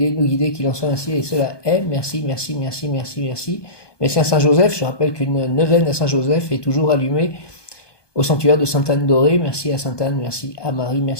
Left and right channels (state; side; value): late; right; 1.2 ms